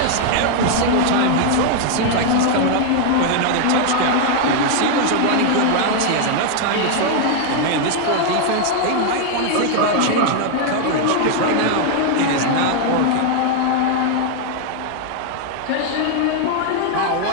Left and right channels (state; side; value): different; both; correlation 0.00